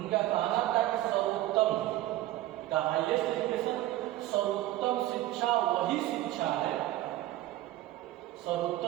कहना था कि सर्वोत्तम, द हाईएस्ट एजुकेशन, सर्वोत्तम शिक्षा वही शिक्षा है,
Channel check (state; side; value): quieter; left; 15.3 dB